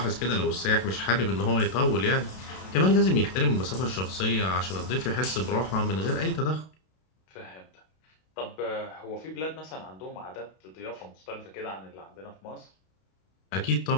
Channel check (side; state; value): right; late; 32 ms